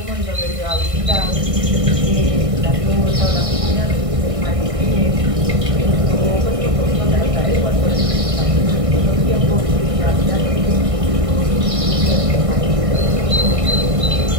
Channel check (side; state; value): left; late; 1.5 ms